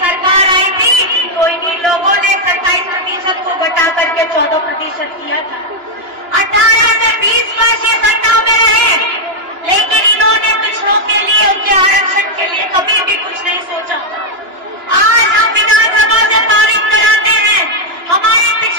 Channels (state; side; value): late; left; 2.9 ms